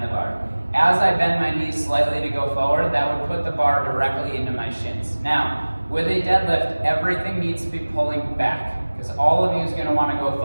the bar. As I bend my knees slightly to go forward, that would put the bar directly into my shins. Now, with a deadlift, everything needs to be pulling back because all of you is going to want to go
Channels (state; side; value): inverted; both; correlation -1.00